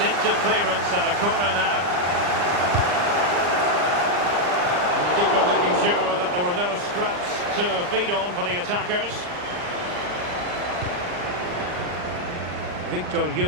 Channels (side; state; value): left; late; 39 ms